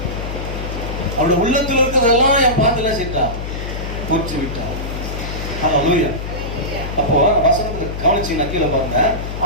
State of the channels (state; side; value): noise; left; hum, 6 dB below the sound